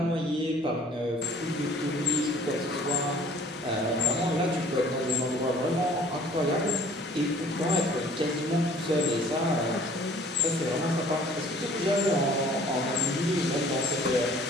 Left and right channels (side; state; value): both; normal; correlation 0.53